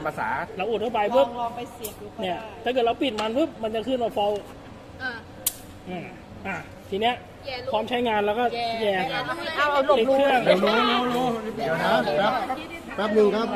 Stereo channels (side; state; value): both; identical; correlation 1.00